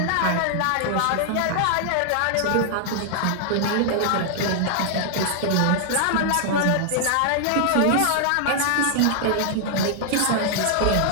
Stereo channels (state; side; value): different; both; correlation 0.00